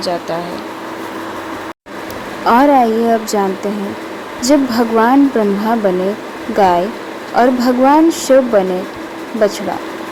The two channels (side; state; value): both; identical; correlation 1.00